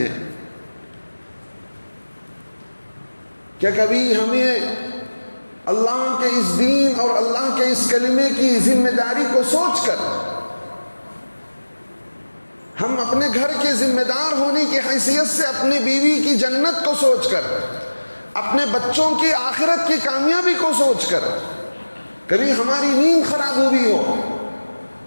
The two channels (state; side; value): inverted; both; correlation -1.00